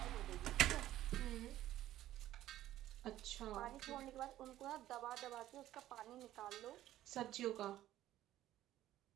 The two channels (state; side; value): quieter; left; 13.7 dB